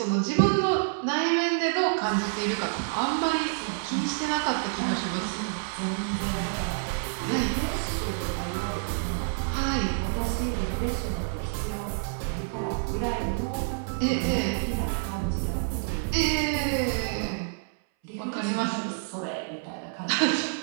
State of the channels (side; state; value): left; silent; 59 dB below the other